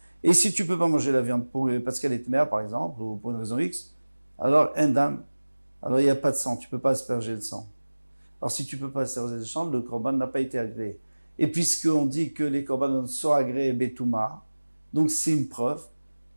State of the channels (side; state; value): both; inverted; correlation -1.00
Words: Et si tu peux pas manger la viande parce qu'elle est mère, par exemple, ou pour une raison X, alors, en dam, alors il n'y a pas de sang, tu peux pas asperger le sang. Alors, si tu peux pas asperger le sang, le korban n'a pas été agréé. Et puisqu'on dit que les korbanos sont agréés betouma, donc c'est une preuve